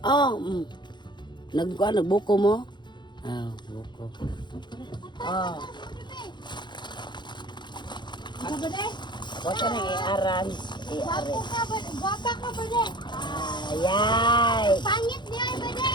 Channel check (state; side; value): late; right; 0.22 ms